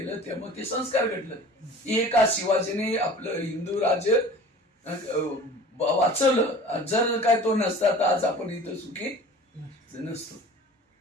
त्यामुळे ते संस्कार घडलं. एका शिवाजीने आपलं हिंदू राज्य वाचवलं. जर काय तो नसता तर आज आपण इथं सुखी नसतो.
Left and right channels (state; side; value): normal; both; correlation 0.43